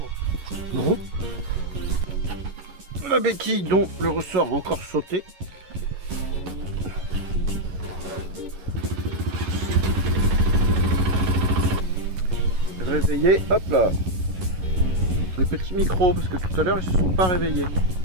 Non. La béquille dont le ressort a encore sauté. Réveillé, hop là. Les petits micros, parce que tout à l'heure ils se sont pas réveillés.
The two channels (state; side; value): late; left; 11 ms